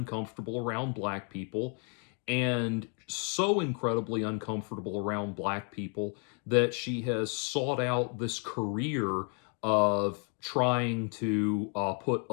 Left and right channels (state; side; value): quieter; right; 38.3 dB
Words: around black people, and so incredibly uncomfortable around black people that she has sought out this career of trying to put